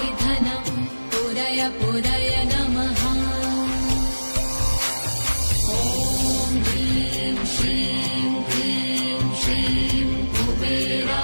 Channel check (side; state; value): both; inverted; correlation -1.00